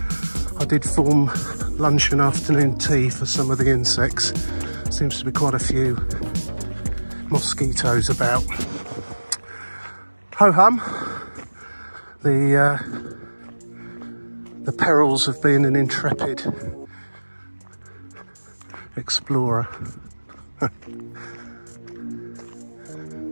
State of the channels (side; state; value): both; inverted; correlation -1.00